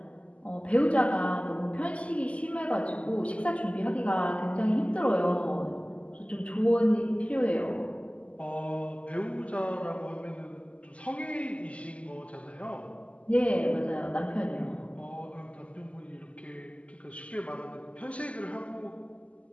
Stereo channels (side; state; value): right; late; 0.063 ms